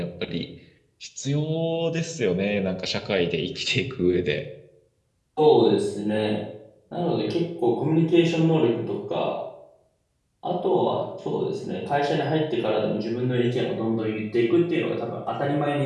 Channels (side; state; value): both; identical; correlation 1.00